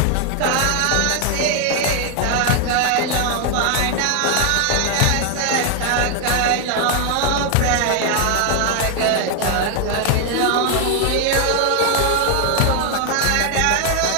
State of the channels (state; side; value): different; both; correlation 0.00